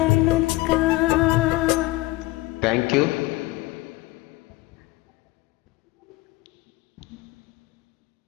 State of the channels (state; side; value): quieter; right; 20.0 dB